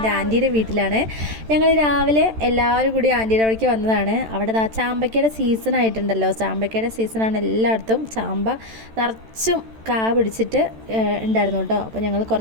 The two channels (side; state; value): left; late; 13 ms